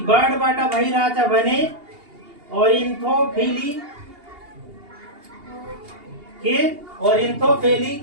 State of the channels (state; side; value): late; left; 2.8 ms